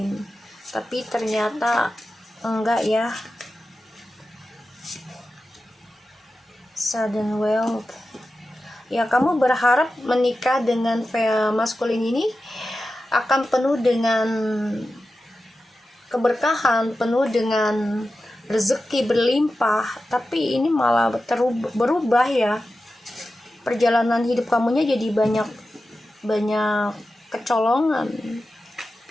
tapi ternyata enggak ya. Sudden wealth, ya kamu berharap menikah dengan maskulin ini akan penuh dengan keberkahan, penuh dengan rezeki berlimpah, tapi ini malah berubah ya. Perjalanan hidup kamunya jadi banyak kecolongan.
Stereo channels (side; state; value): both; normal; correlation 0.93